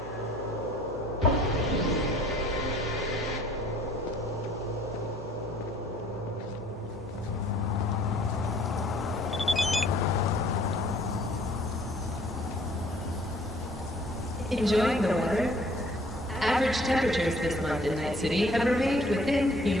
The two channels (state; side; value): normal; both; correlation 0.57